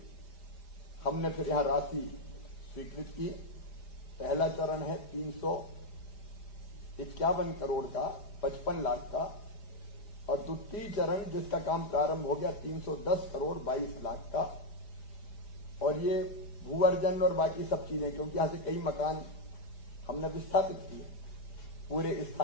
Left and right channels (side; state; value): right; late; 4.8 ms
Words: हमने फिर यहां राशि स्वीकृत की। पहला चरण है 351 करोड़ का, 55 लाख का, और द्वितीय चरण जिसका काम प्रारंभ हो गया 310 करोड़ 22 लाख का। और ये भूअर्जन और बाकी सब चीजें, क्योंकि यहां से कई मकान हमने विस्थापित किए, पूरे